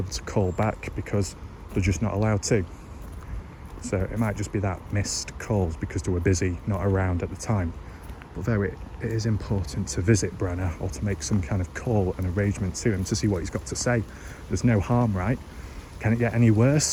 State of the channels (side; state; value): both; identical; correlation 1.00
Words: to call back because they're just not allowed to. So it might just be that, missed calls because they were busy, not around at the time. But though it is important to visit Brenner or to make some kind of call and arrangement to him to see what he's got to say. There's no harm, right? Can it get any